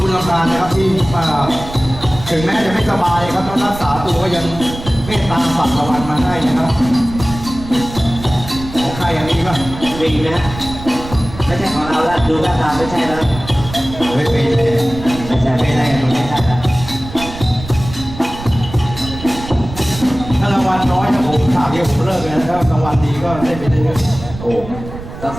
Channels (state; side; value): noise; right; rumble, 12 dB below the sound